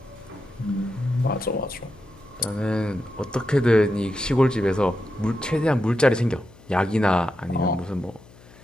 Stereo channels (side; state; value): left; noise; hum, 24 dB below the sound